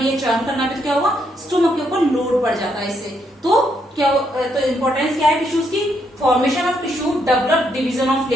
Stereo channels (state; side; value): normal; both; correlation 0.76